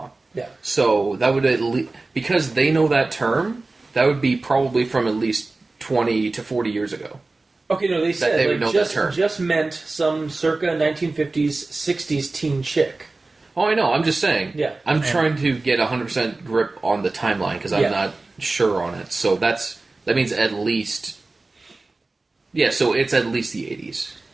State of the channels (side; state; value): left; quieter; 3.4 dB